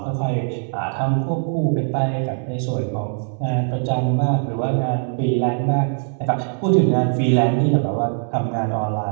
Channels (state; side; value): silent; left; 65 dB below the other